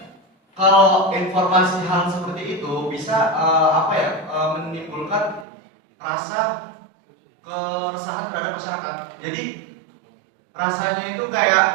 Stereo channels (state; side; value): drops out; left; at 5.5 s